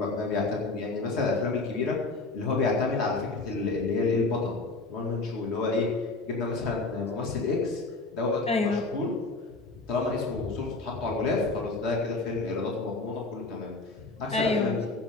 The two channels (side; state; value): right; quieter; 3.4 dB